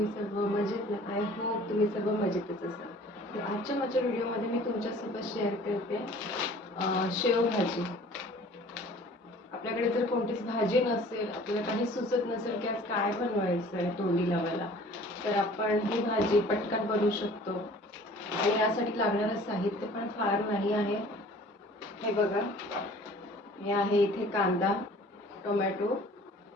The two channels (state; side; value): normal; both; correlation 0.49